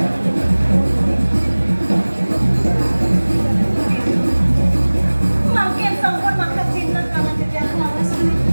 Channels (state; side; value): inverted; both; correlation -1.00